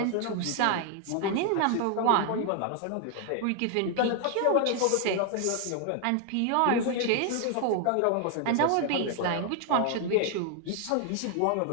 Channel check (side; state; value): both; different; correlation 0.00